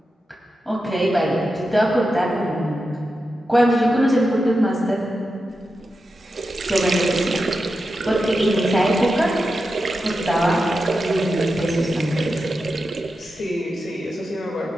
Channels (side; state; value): both; normal; correlation 0.90